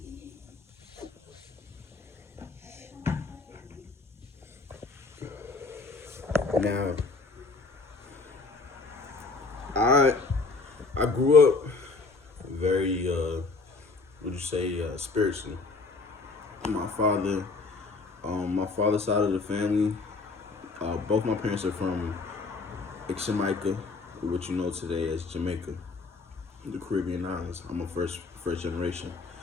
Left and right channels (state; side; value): quieter; right; 4.0 dB